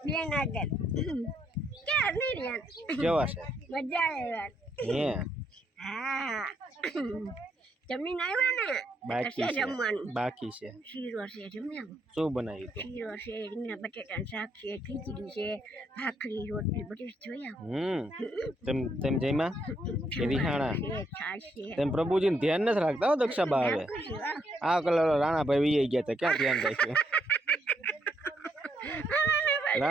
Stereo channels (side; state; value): both; normal; correlation 0.74